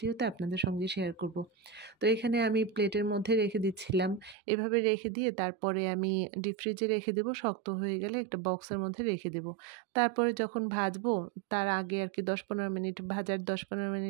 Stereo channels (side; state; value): left; drops out; at 4.4 s